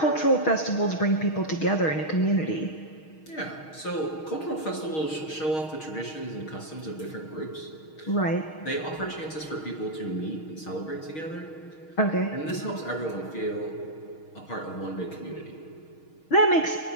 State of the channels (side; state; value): right; late; 6.4 ms